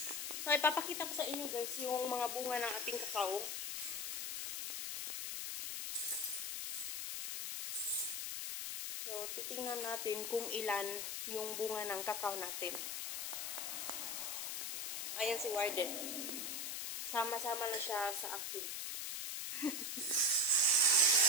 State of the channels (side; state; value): left; noise; hiss, 2 dB below the sound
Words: So ipapakita ko sa inyo guys yung mga bunga ng ating kakao. So, titingnan natin kung ilan yung bunga ng kakao natin. Ayan si Warden. Sama-sama na siya sa akin.